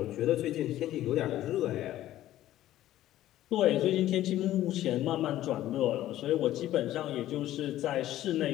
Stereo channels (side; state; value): right; quieter; 13.8 dB